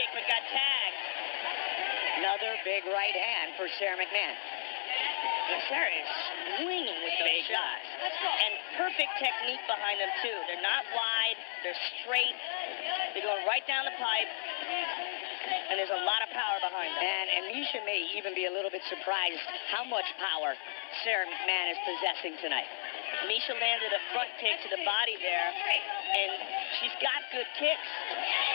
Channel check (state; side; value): silent; right; 55 dB below the other